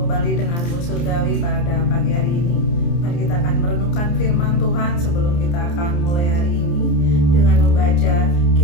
kembali denganmu surgawi pada pagi hari ini. Mari kita akan merenungkan firman Tuhan sebelum kita akan mulai hari ini dengan membaca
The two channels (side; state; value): right; late; 29 ms